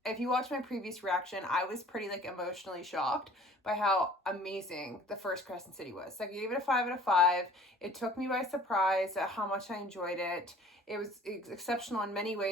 if you watch my previous reaction, I was pretty emotionally shocked by how amazing the first Crescent City was. I gave it a 5 out of 5. It took me by surprise at how much I enjoyed it. It was exceptional in many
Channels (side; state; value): both; normal; correlation 0.50